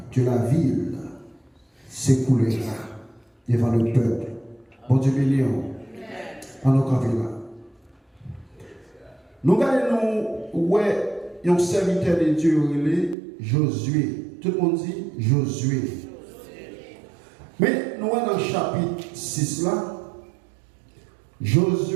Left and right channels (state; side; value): drops out; left; at 13.2 s